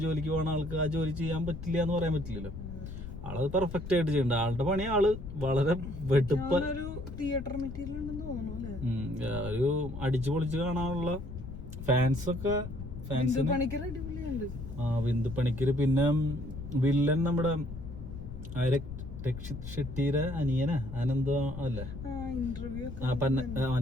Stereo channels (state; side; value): noise; left; rumble, 10 dB below the sound